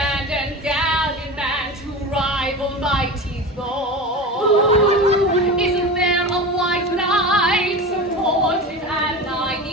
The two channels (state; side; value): normal; both; correlation 0.28